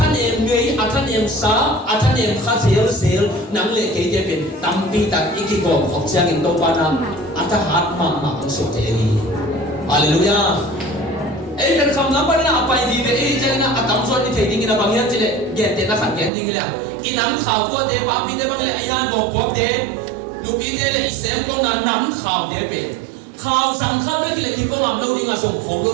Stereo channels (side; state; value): left; drops out; at 16.3 s